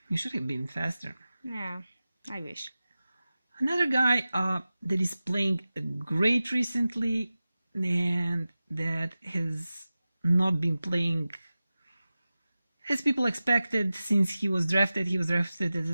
you should have been faster. Yeah, I wish. Another guy that is playing great recently, and that has not been playing as people expected since he was drafted. He was drafted as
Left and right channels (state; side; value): inverted; both; correlation -0.95